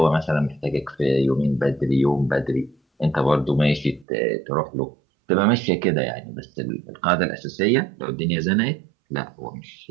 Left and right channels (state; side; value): drops out; left; at 4.0 s